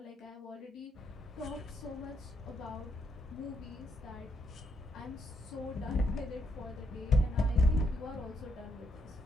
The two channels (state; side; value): normal; both; correlation 0.77